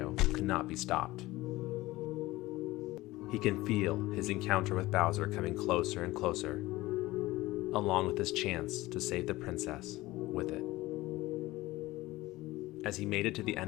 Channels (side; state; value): right; quieter; 18.7 dB